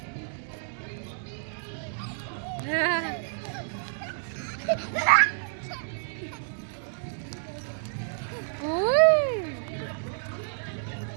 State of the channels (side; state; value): left; silent; digital silence